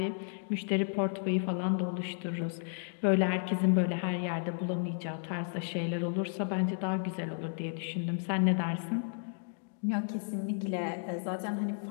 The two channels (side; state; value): right; silent; digital silence